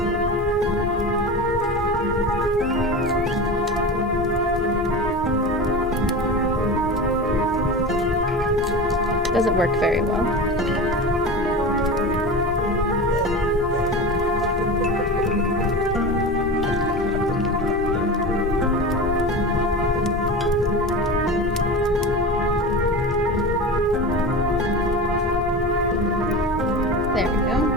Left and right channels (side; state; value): both; normal; correlation 0.28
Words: Doesn't work very well. There we go.